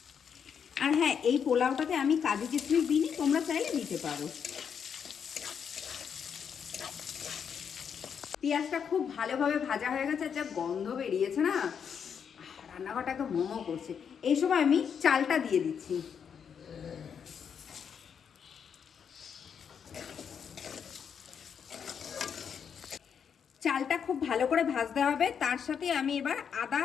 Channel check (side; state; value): right; quieter; 7.3 dB